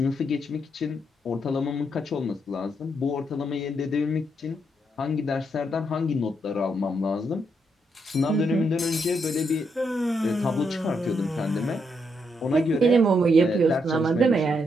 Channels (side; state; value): both; normal; correlation 0.78